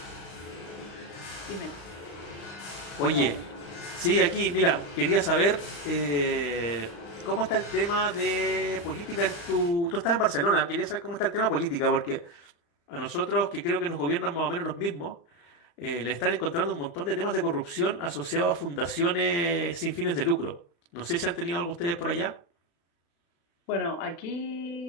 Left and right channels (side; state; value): right; late; 35 ms